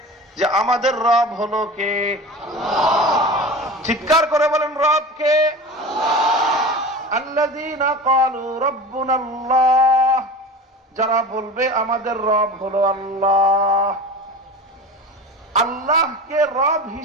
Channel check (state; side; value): normal; both; correlation 0.33